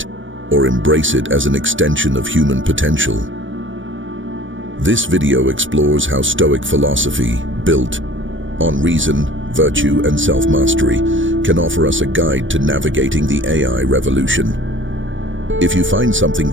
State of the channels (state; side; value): late; left; 0.56 ms